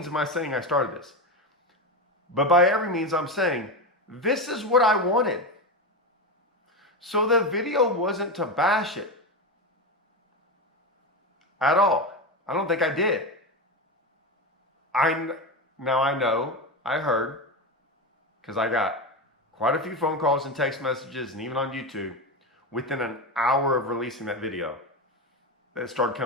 am I saying I started this, but by every means I'm saying this is what I wanted. So the video wasn't to bash it at all. I don't think I did. I heard, because I got quite a few phone calls and text messages, and even on YouTube, within an hour of releasing that video, that started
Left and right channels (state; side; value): normal; both; correlation 0.17